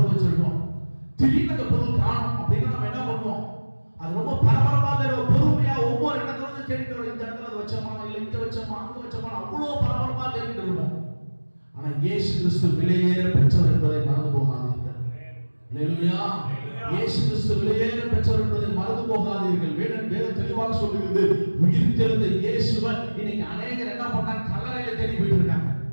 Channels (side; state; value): both; inverted; correlation -1.00